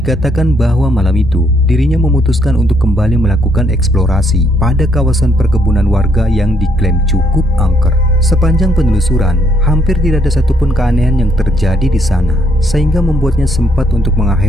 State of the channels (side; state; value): both; normal; correlation 0.71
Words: bahwa malam itu dirinya memutuskan untuk kembali melakukan eksplorasi pada kawasan perkebunan warga yang diklaim cukup angker. Sepanjang penelusuran, hampir tidak ada satupun keanehan yang terjadi di sana, sehingga membuatnya sempat untuk